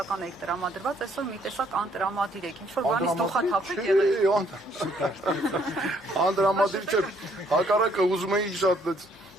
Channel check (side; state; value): both; normal; correlation 0.66